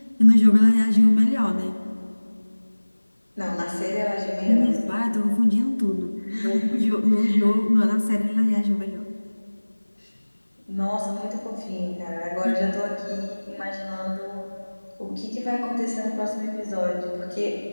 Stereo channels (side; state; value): both; inverted; correlation -1.00